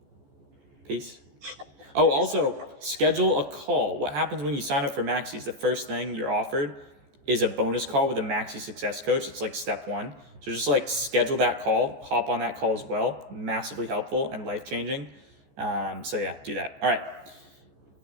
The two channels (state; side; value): late; left; 14 ms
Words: Peace. Oh, also, schedule a call. What happens when you sign up for Maxi is the first thing you're offered is a bonus call with a Maxi success coach. It's like step 1. So just like schedule that call, hop on that call as well. Massively helpful and life-changing. So yeah, do that. All right.